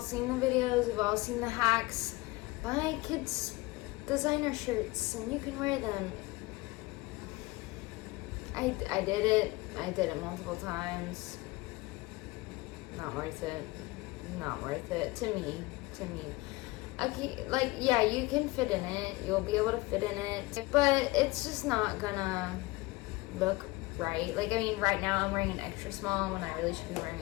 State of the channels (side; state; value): right; quieter; 21.7 dB